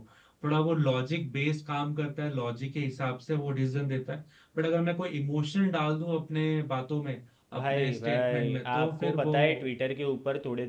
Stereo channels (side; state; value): both; identical; correlation 1.00